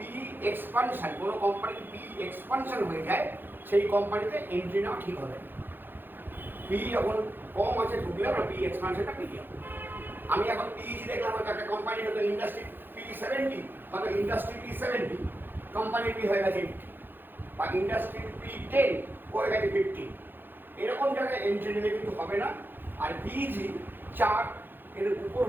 এক্সপানশন, কোনো কোম্পানির পি এক্সপানশন হয়ে যায় সেই কোম্পানিতে এন্ট্রি নেওয়া ঠিক হবে। পি যখন কম আছে ঢুকলে আমরা পি এক্সপানশনটা পেয়ে যাবো। আমি এখন পিইজি দেখলাম হয়তো একটা কোম্পানি হয়তো ইন্ডাস্ট্রি পি 70, হয়তো ইন্ডাস্ট্রি পি 70, কোম্পানির পি হয়ে গেছে 80, বা ইন্ডাস্ট্রির পি 10 হয়ে গেছে 50, এরকম জায়গায় এন্ট্রি নিলে কিন্তু হবে না। আর পিইজি 4 এর উপর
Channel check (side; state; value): left; late; 0.097 ms